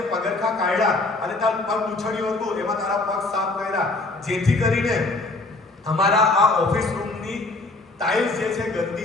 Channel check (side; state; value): right; quieter; 3.1 dB